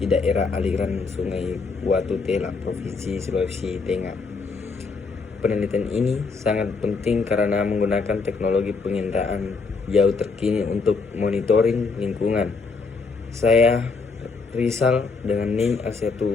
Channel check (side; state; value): right; quieter; 4.5 dB